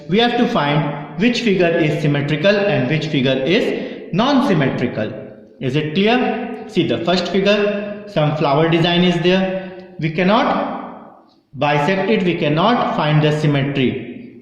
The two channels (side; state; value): both; identical; correlation 1.00